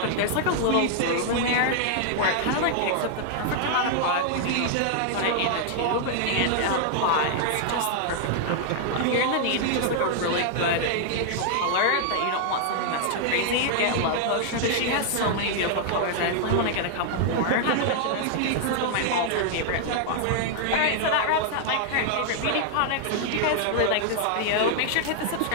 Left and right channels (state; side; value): different; both; correlation -0.01